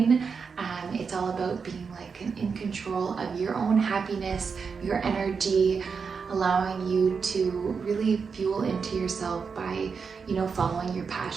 It's all about being in control of your own happiness, your energy, allowing you to really fuel into yourself by following your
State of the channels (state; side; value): quieter; left; 5.6 dB